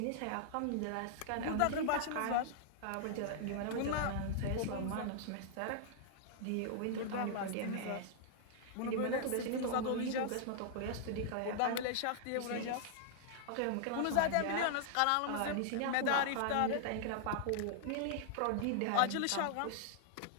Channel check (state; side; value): different; both; correlation -0.01